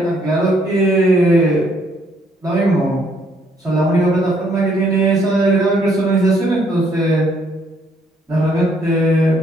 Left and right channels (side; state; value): both; normal; correlation 0.68